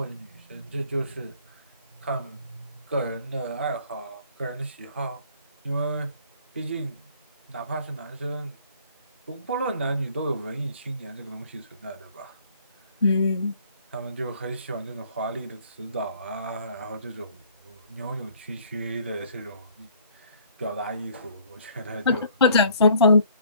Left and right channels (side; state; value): both; inverted; correlation -0.58